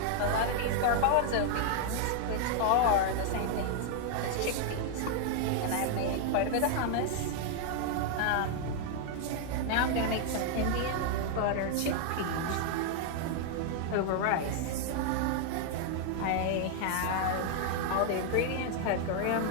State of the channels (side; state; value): both; different; correlation 0.00